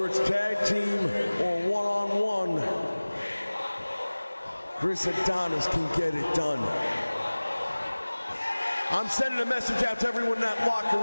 it's tag team or one-on-one, Chris Adonis can get it done. I'm sending a message out to everyone in that locker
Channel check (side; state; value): both; inverted; correlation -1.00